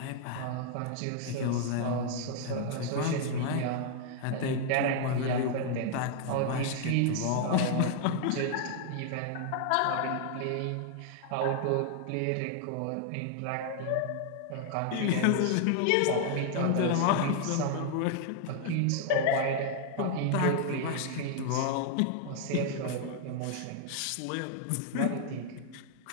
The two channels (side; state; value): both; different; correlation 0.00